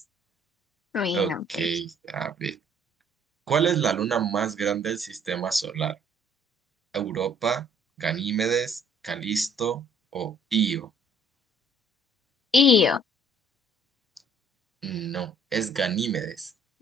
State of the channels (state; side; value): normal; both; correlation 0.60